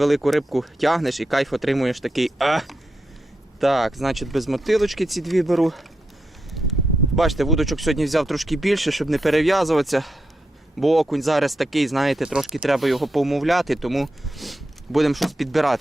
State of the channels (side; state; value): both; normal; correlation 0.85